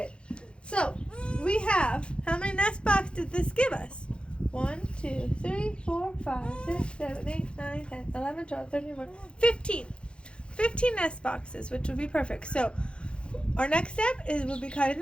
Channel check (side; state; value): right; late; 0.056 ms